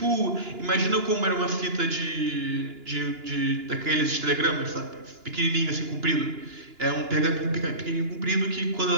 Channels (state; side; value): late; left; 2.9 ms